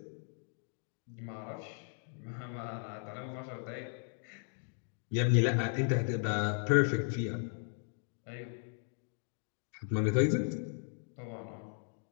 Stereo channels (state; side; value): silent; right; 53 dB below the other